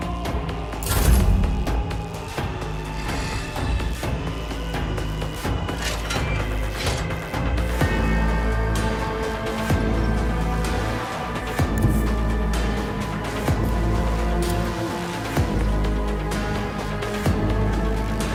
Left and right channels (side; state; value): both; identical; correlation 1.00